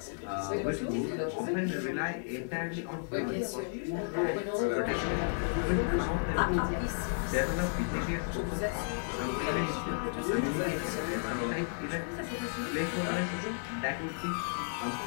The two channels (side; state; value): right; silent; 56 dB below the other